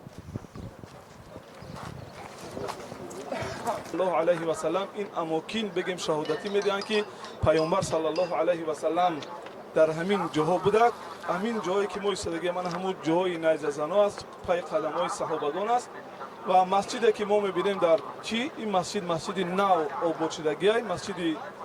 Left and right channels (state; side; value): identical; both; correlation 1.00